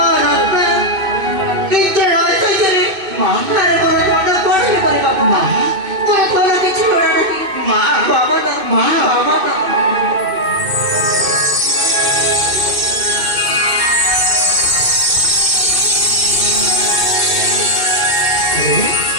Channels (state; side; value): late; left; 2.6 ms